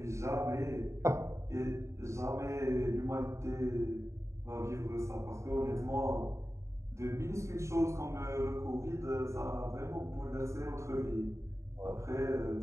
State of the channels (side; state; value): left; late; 0.14 ms